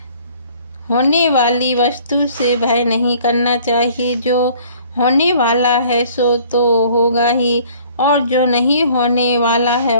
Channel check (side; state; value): both; inverted; correlation -0.55